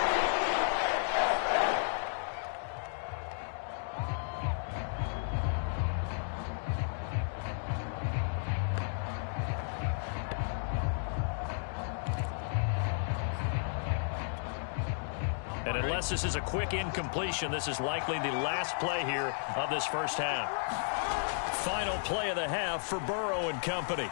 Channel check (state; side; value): silent; right; digital silence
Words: And unless this is a quick incompletion, this is likely the last play here of this first half. Final play of the half for Burrow and company.